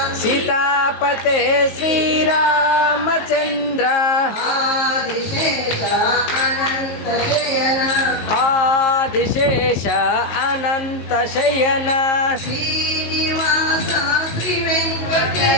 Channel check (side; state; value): right; late; 19 ms